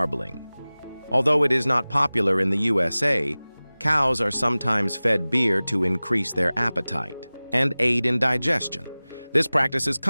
Although it is not popular in the USA, cows are sometimes fed beer to increase their appetite and aid in digestion. This practice is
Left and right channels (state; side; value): inverted; both; correlation -0.99